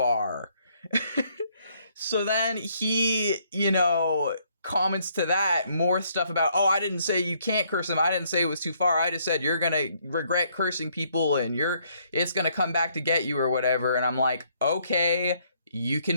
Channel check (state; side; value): inverted; both; correlation -0.68